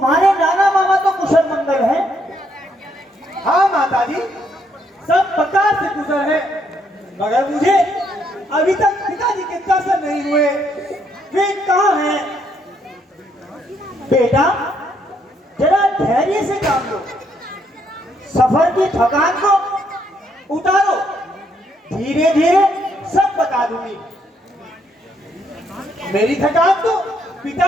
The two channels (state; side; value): normal; both; correlation 0.72